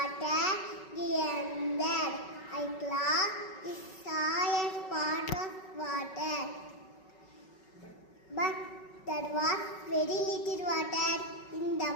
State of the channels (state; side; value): late; right; 5.3 ms